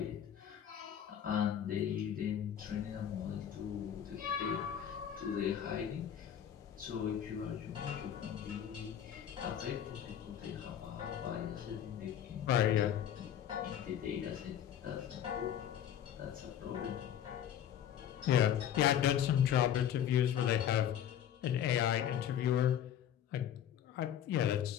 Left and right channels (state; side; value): quieter; right; 9.9 dB